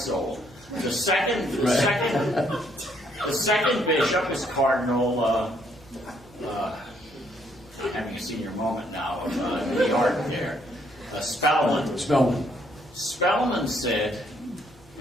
The second bishop is Cardinal, having a senior moment now of New York there, Spellman. Spellman said,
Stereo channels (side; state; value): right; noise; hum, 27 dB below the sound